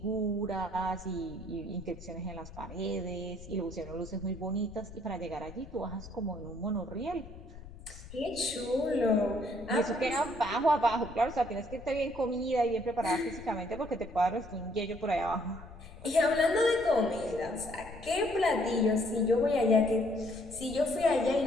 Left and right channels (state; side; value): noise; left; rumble, 16 dB below the sound